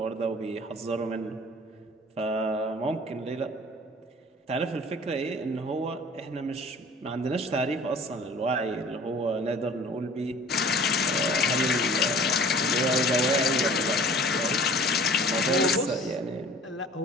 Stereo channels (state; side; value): normal; both; correlation 0.47